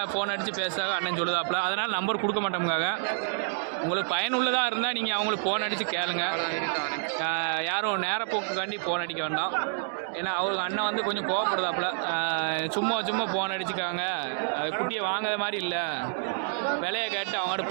ஃபோன் அடித்து பேசுகிறாங்க அண்ணன் சொல்லுதாப்புல. அதனால் நம்பர் கொடுக்க மாட்டோமுக்காக. உங்களுக்கு பயனுள்ளதாக இருந்தால் நீங்கள் அவங்களுக்கு ஃபோன் அடித்து கேளுங்க. யாரும் நேரப்போக்குக்காண்டி ஃபோன் அடிக்க வேண்டாம். ஏன்னா அவங்க அண்ணன் வந்து கொஞ்சம் கோவப்படுதாப்புல. சும்மா ஃபோன் அடிச்சுக்காங்க, அது குட்டியை வாங்காத மாதிரி இல்லை, விலையை கேட்டு அவங்கள்ட்ட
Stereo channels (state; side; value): silent; left; digital silence